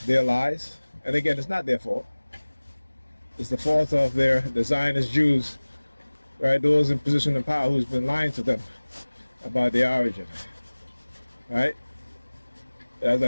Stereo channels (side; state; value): both; inverted; correlation -1.00